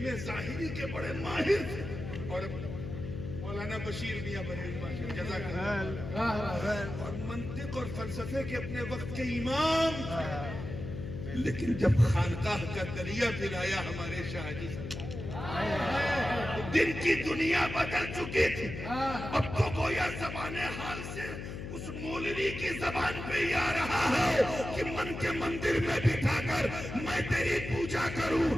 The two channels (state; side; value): noise; left; hum, 8 dB below the sound